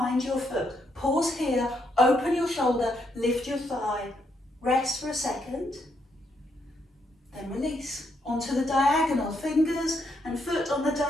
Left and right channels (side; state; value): both; normal; correlation 0.77